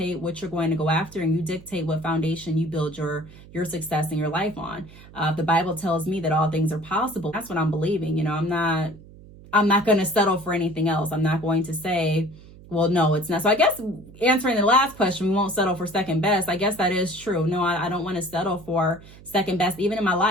what you're going to go after, and you dictate what foundation you build your success in your life on. The Bible tells me that all things are possible. That's what I'm believing. I'm not going to settle for anything else. I'm not going to say, well, no, it's not. So I guess answering the last question, we won't settle for second best. I guess that is true. No, I don't want to settle for second best, even in my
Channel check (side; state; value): right; noise; hum, 20 dB below the sound